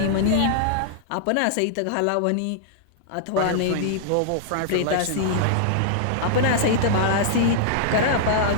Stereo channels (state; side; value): different; both; correlation -0.01